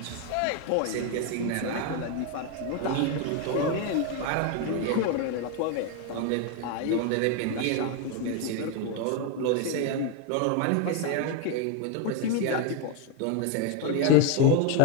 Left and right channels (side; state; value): both; different; correlation 0.01